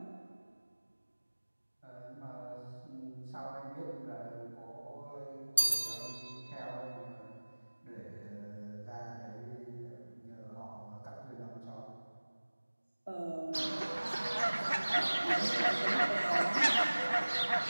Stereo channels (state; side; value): inverted; both; correlation -1.00